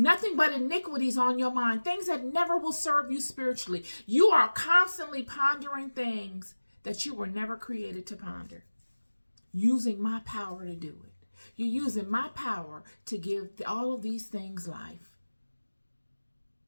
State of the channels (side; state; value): both; inverted; correlation -1.00